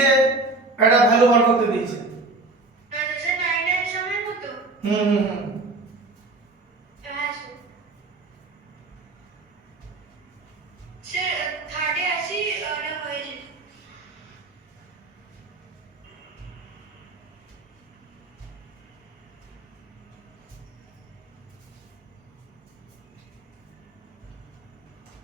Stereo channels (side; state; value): left; quieter; 3.2 dB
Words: একটা ভ্যালু বার করতে দিয়েছে। স্যার 9 এর সময় কত হুম হুম হুম। হ্যাঁ স্যার স্যার থার্ডে আসি ওটা হয়েছে